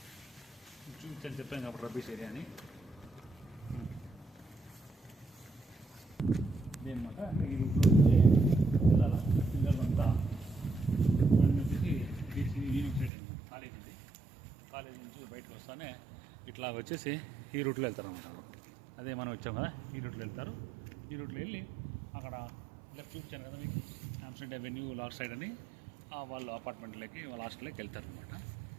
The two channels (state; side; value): drops out; left; at 13.1 s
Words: చూపించని చెప్పాను కాబట్టి రబ్బీష్ ఏరియా అని. ఇదన్నమాట, అంటే ఈ రూట్లో వెళ్ళాలి పిల్లలంతా. వచ్చేసి బీసీ యూనివర్సిటీ అనమాట, కాలేజ్ ఉంది. కాలేజ్ నుంచి బయటకు వస్తానే ఇట్లా వచ్చేసి ఈ రూట్లో వెళ్తారన్నమాట. అదే మనం వచ్చాం కదా, ఈ రూట్లో వెళ్తారు. ఈ రూట్లో వెళ్ళి అక్కడ లెఫ్ట్ చూపించాను కదా మీకు, హాంప్స్టెడ్ అవెన్యూ లాస్ట్ సైడ్ అని, వాళ్ళు అపార్ట్మెంట్లోకి వాళ్ళ హాస్టల్లోకి వెళ్తారనమాట.